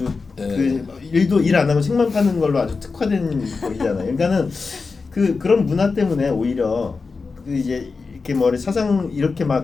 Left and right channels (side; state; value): right; quieter; 4.4 dB